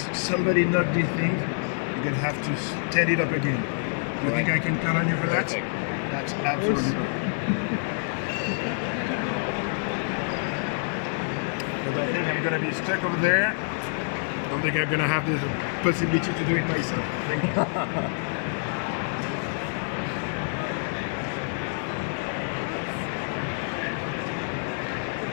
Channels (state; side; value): silent; right; 60 dB below the other